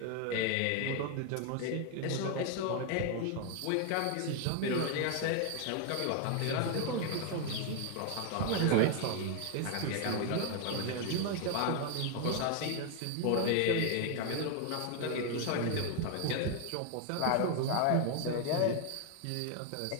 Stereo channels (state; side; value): different; both; correlation 0.00